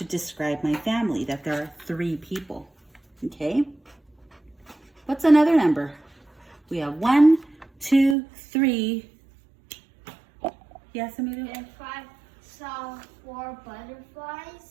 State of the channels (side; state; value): left; drops out; at 8.2 s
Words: describe my family, that there are 3 people, okay? What's another number? We have 1, 2, 3. Yes, Emilio? If I saw 4